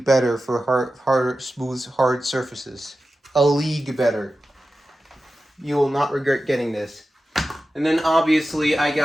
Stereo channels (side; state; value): both; normal; correlation 0.93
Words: better for smooth, hard surfaces. A league better. You will not regret getting this. And then obviously I